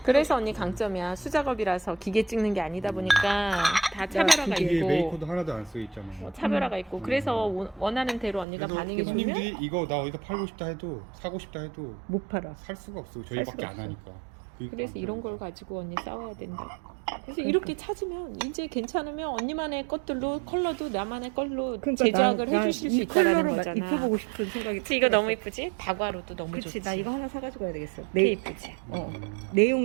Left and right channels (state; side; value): drops out; left; at 8.5 s